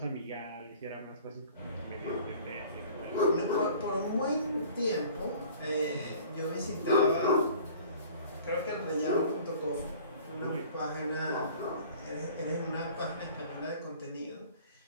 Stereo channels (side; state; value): both; inverted; correlation -0.47